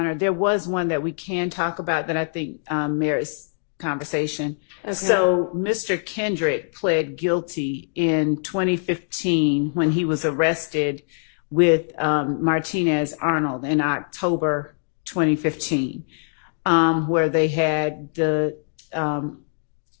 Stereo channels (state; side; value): silent; right; digital silence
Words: There was one that we can talk about that I think merits conversation. Okay. So Mr. Kendrick pled guilty in 2015 when he was arrested with Martinez Arnold in October 2015, where they had the